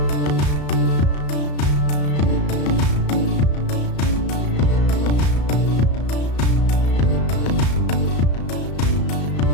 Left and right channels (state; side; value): late; right; 34 ms